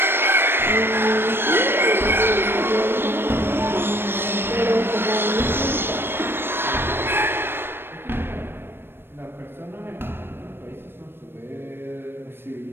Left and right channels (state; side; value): late; left; 0.10 ms